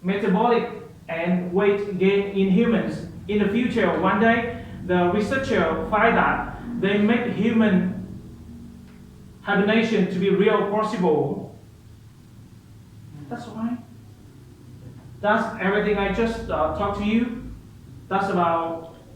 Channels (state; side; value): identical; both; correlation 1.00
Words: metabolic and weight gain in humans. In the future, one day, the researcher find that they make human hibernation to be real possible. That's why. That's everything I just talked to you. That's